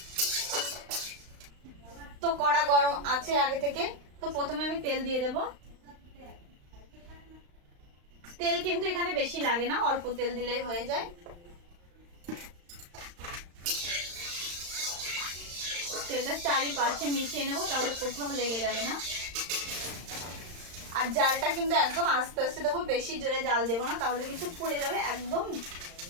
তো কড়া গরম আছে আগে থেকে। তো প্রথমে আমি তেল দিয়ে দেব। তেল কিন্তু এখানে বেশি লাগে না, অল্প তেল দিলেই হয়ে যায়। তেলটা চারিপাশে মিশিয়ে নেবো, তাহলে কোথাও লেগে যাবে না। আর জালটা কিন্তু একদম আস্তে আস্তে দেবো, বেশি জোরে জাল দেবো না, তাহলে কিন্তু পুড়ে যাবে একদম।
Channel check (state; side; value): late; left; 35 ms